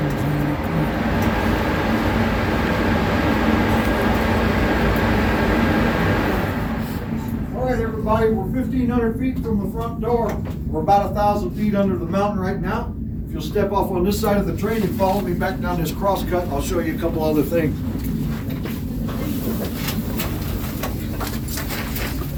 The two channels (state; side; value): identical; both; correlation 1.00